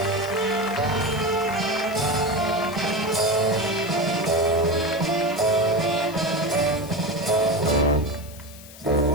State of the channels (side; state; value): left; noise; hiss, 18 dB below the sound